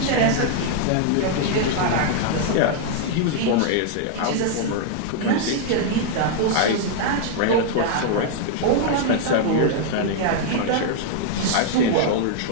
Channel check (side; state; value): both; different; correlation 0.00